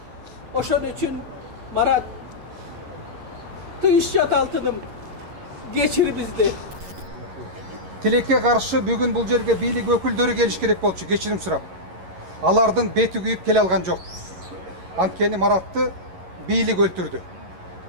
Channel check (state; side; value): late; left; 11 ms